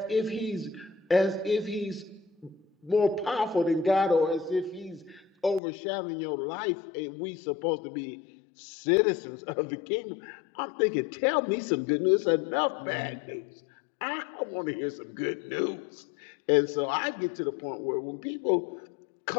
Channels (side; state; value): right; drops out; at 5.6 s